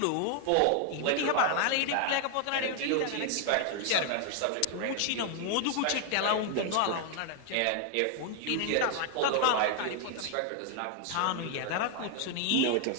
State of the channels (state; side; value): different; both; correlation 0.00